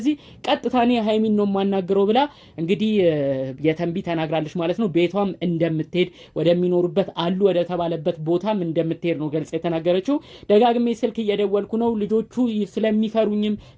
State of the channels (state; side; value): identical; both; correlation 1.00